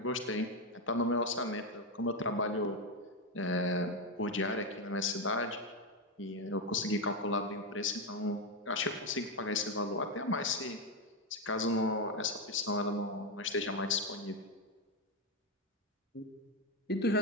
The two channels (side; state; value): both; normal; correlation 0.07